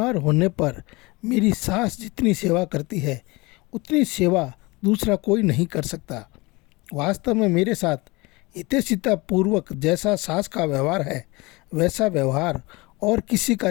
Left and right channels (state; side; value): quieter; right; 24.1 dB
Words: होने पर मेरी सास जितनी सेवा करती है उतनी सेवा दूसरा कोई नहीं कर सकता। वास्तव में मेरे साथ हितैषिता पूर्वक जैसा सास का व्यवहार है वैसा व्यवहार और किसी का